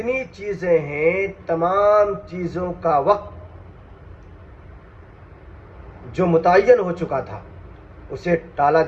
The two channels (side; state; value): both; identical; correlation 1.00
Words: چیزیں ہیں تمام چیزوں کا وقت جو متعین ہو چکا تھا اسے ٹالا